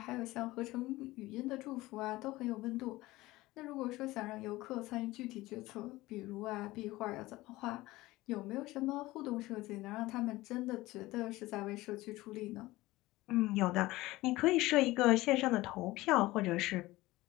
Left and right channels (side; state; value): right; quieter; 18.9 dB